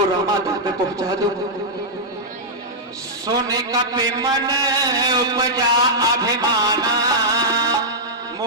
रामादल में पहुंचा दूं। सोने का पे मन उपजा अभिमाना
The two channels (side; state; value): both; normal; correlation -0.08